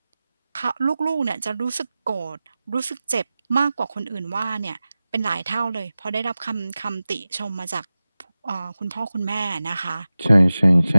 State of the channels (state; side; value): inverted; both; correlation -0.96